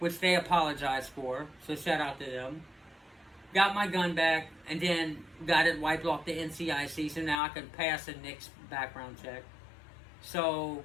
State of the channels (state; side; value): drops out; right; at 7.4 s